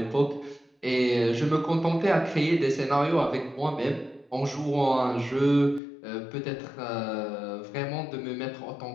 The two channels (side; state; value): right; drops out; at 5.8 s